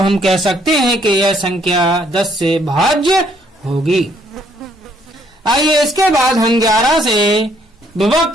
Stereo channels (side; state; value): both; normal; correlation 0.67